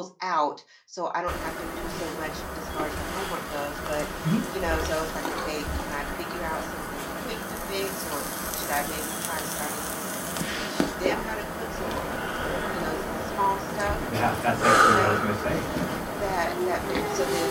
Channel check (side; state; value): both; identical; correlation 1.00